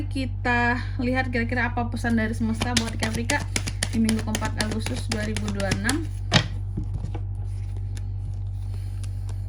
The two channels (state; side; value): identical; both; correlation 1.00